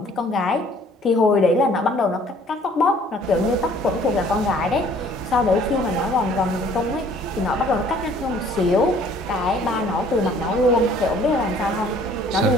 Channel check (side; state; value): both; normal; correlation 0.56